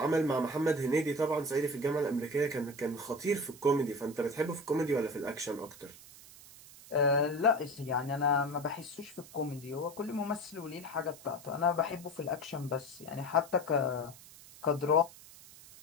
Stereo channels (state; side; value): noise; right; hiss, 19 dB below the sound